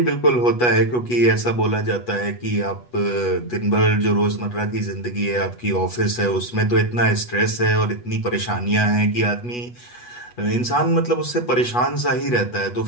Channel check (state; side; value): late; right; 8.2 ms